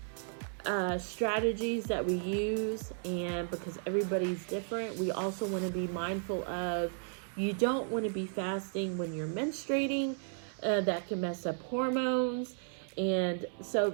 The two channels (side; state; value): left; silent; digital silence